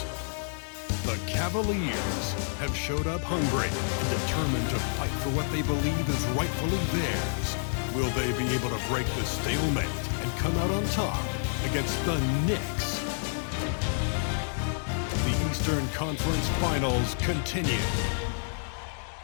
The Cavaliers have showed up hungry and determined to fight for what they believe is rightfully theirs. Will they be able to break the stalemate and come out on top against the Knicks? The Eastern Conference Finals continue.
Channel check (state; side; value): silent; right; digital silence